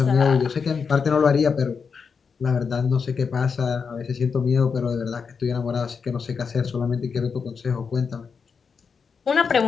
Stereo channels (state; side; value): quieter; right; 5.8 dB